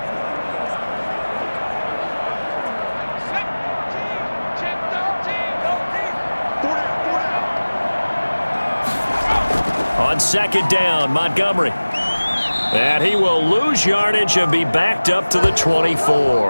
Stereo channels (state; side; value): inverted; both; correlation -1.00